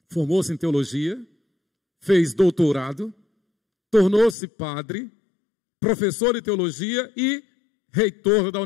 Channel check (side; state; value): right; drops out; at 4.4 s